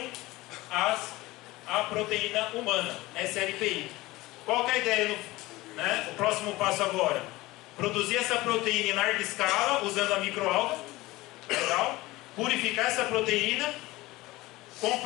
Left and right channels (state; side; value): quieter; right; 19.5 dB